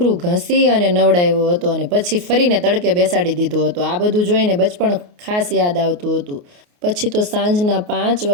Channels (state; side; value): late; left; 28 ms